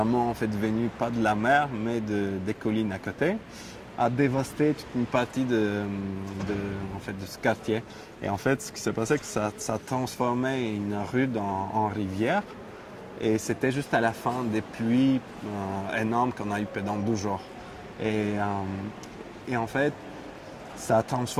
en fait venue pas de la mer, mais des collines à côté, a dévasté toute une partie en fait, de ce quartier. Et en fait, ce qui s'est passé, c'est que ça a transformé une rue en rivière. Et c'était juste à la fin des pluies énormes qu'on a eu pendant 12 jours. Et en fait, ça a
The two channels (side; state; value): both; identical; correlation 1.00